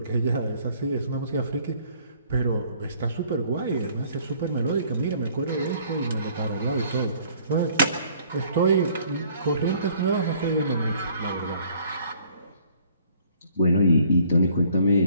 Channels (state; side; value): inverted; both; correlation -0.59